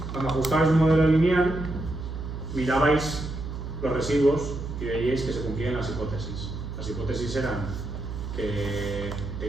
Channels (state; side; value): noise; right; hum, 7 dB below the sound